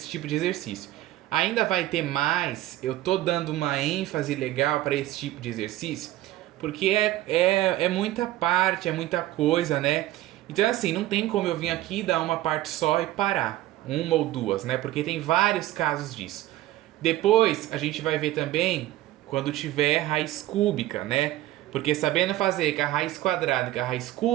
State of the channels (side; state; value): left; quieter; 15.3 dB